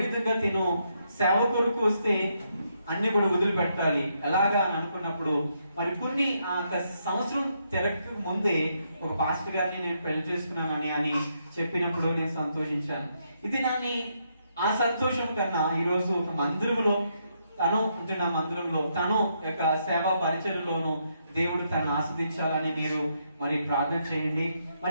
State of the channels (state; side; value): inverted; both; correlation -0.77